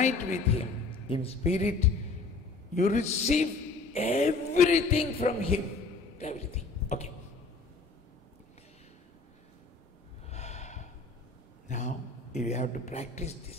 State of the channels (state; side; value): quieter; right; 3.8 dB